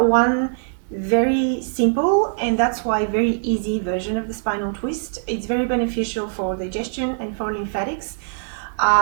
very simple, and that's why very easy version of the spinal twist. It's very beneficial for digestion and for lymphatics.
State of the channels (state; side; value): silent; left; digital silence